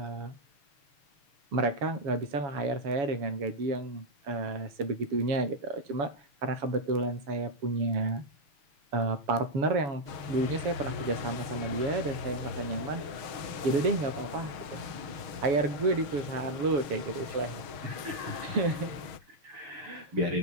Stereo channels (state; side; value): late; left; 6.4 ms